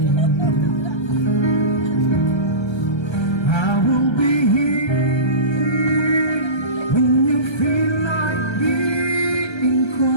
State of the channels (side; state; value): right; late; 1.3 ms